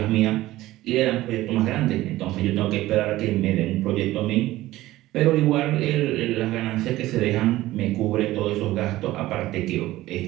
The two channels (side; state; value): left; quieter; 16.5 dB